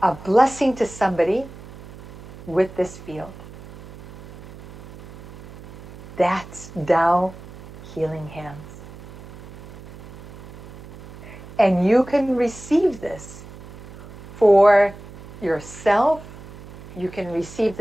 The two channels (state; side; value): noise; right; hum, 16 dB below the sound